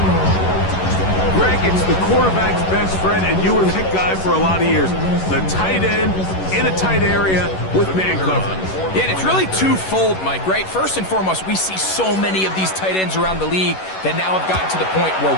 Greg, it's the quarterback's best friend, and you were that guy for a lot of years. The tight end in a tight area with man coverage. Yeah, and it's really twofold, Mike, right? First and foremost, we see so many of these tight ends around the league that now have gotten to the point where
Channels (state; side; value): late; right; 11 ms